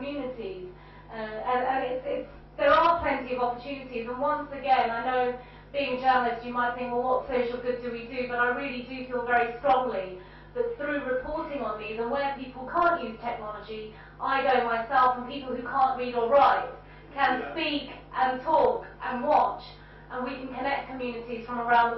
And there are plenty of opportunities. And once again, I know being a journalist, you might think, well, what social good do we do? But I really do feel very strongly that through reporting on these, and where people can't use technology, I go myself, and people who can't read or write can speak and talk and watch, and we can connect communities from around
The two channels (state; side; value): identical; both; correlation 1.00